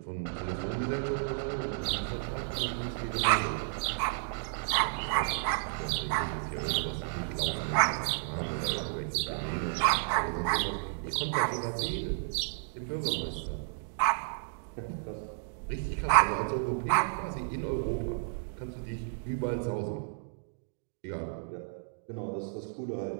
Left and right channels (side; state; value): left; silent; digital silence